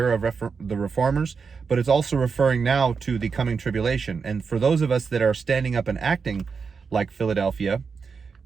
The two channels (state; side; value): quieter; left; 5.4 dB